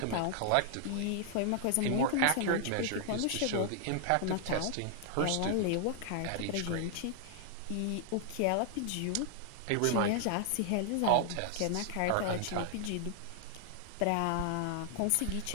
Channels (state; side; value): different; both; correlation 0.00